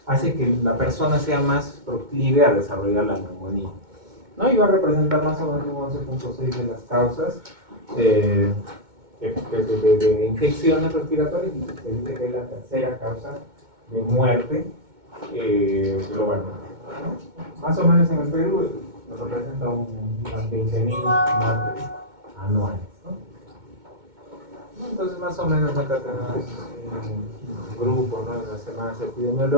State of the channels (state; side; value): late; left; 2.2 ms